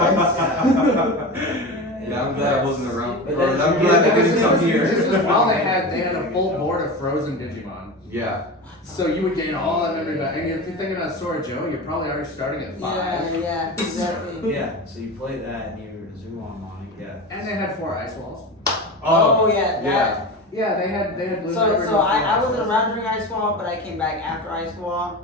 Yeah, I'm glad I wasn't around. But Or then- I'm glad I didn't come This here. was while they had a full board of frozen Digimon. Yeah. So you would gain all that memory back. And if you're thinking about Sora Joe, you're probably already starting at 5. Yeah, exactly. Yeah, so you play that and you zoom on, yeah. And they had 4 ice walls. Oh yeah, yeah. Yeah, they had blue. So hybrid so and I four wasn't ice around during Ice Wall, but I came back after Ice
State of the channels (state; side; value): normal; both; correlation 0.27